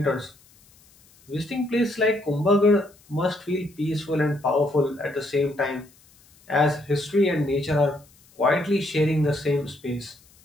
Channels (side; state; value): left; noise; hiss, 29 dB below the sound